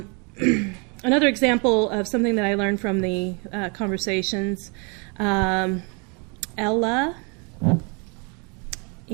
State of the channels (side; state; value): left; quieter; 33.3 dB